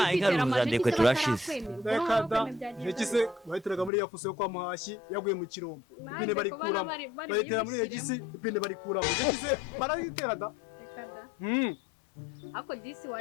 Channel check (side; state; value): right; drops out; at 3.9 s